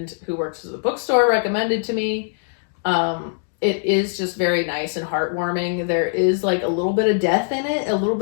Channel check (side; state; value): right; silent; digital silence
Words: who works at the bookstore recommended to me. It is just very nice and heartwarming. There is like a little bit of death in it, a little